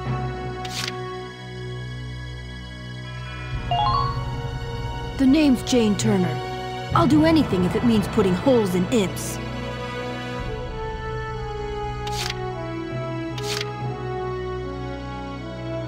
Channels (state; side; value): identical; both; correlation 1.00